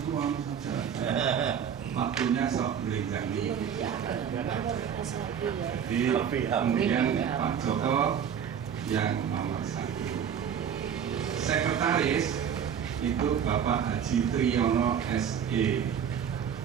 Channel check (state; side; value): quieter; left; 8.1 dB